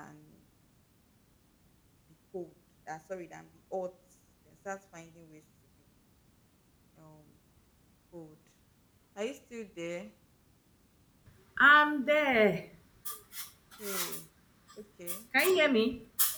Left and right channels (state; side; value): identical; both; correlation 1.00